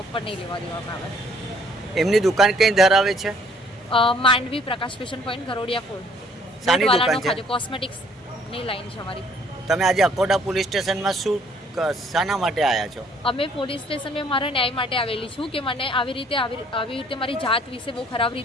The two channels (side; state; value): both; normal; correlation 0.61